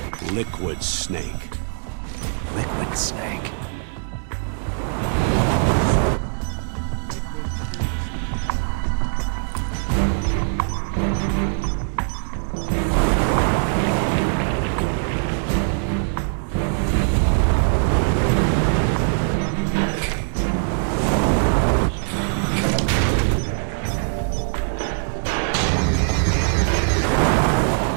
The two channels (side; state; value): left; silent; digital silence